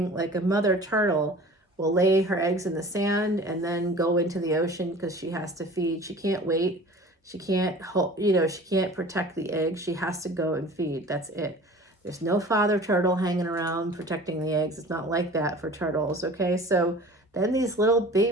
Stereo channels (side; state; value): both; normal; correlation 0.42